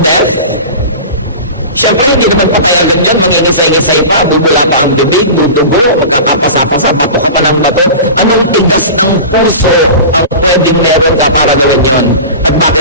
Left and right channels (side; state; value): both; inverted; correlation -0.32